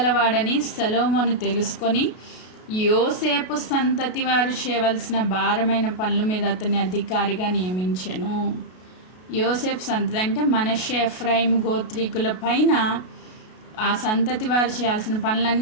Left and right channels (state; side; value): late; right; 33 ms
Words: సొలొమోను తెలుసుకొని యోసేపు సంతతి వారు చేయవలసిన భారమైన పనుల మీద అతన్ని అధికారిగా నియమించెను. యోసేపు సంతతి అంటే మనష్షే ఎఫ్రాయిం గోత్రీకుల పైన ఆ సంతతి వారు చేయాల్సిన